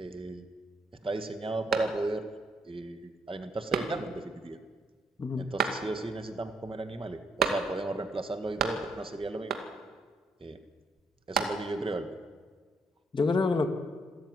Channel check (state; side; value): normal; both; correlation 0.72